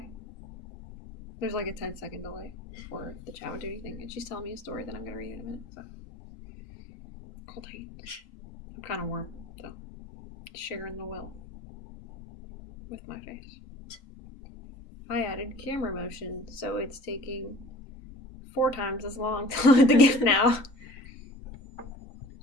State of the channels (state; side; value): late; right; 3.9 ms